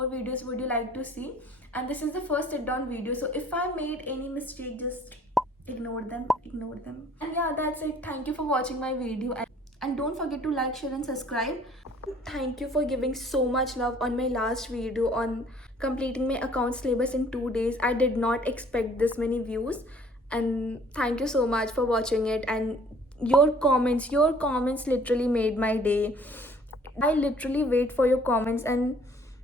videos would you like to see. And this is the first sit down video, so if I made any mistake, just ignore them. And yeah, that's it. Thank you for watching my video, and don't forget to like, share and subscribe. Thank you for giving so much love on my last video on completing my account syllabus in 2 days. I did not expect this many views, and thank you so much for watching it. And your comments literally made my day. I literally wait for your comments, and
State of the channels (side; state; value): both; normal; correlation 0.56